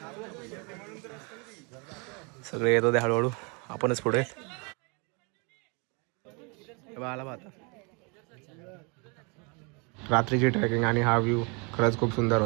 सगळे येत होते हळूहळू, आपणच पुढे. आला आता रात्रीची ट्रेकिंग आणि हा व्ह्यू खरंच खूप सुंदर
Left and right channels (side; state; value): left; quieter; 32.2 dB